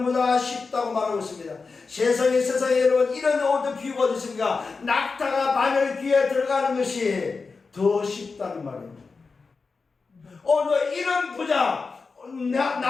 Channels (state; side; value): quieter; right; 4.5 dB